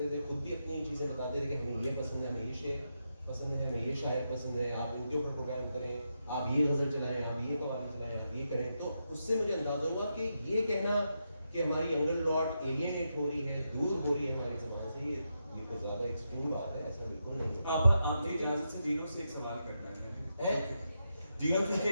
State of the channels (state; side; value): inverted; both; correlation -0.85